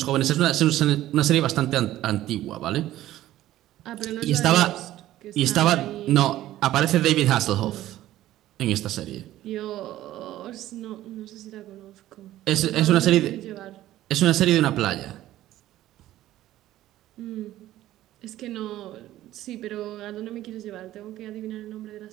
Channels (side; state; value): left; quieter; 14.3 dB